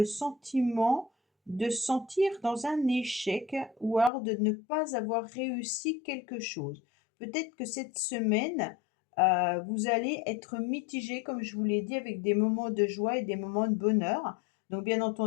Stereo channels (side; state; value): right; drops out; at 4.1 s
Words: sentiment de sentir dans un échec ou alors de ne pas avoir réussi quelque chose. Peut-être que cette semaine, vous allez être mitigé, comme je vous l'ai dit, avec des moments de joie et des moments de bonheur. Donc bien